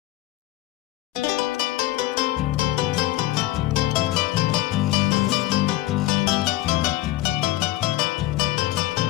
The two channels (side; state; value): right; quieter; 16.1 dB